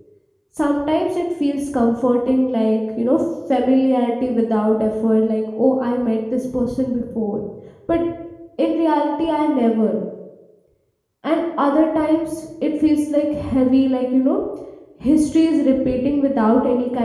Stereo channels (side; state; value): both; identical; correlation 1.00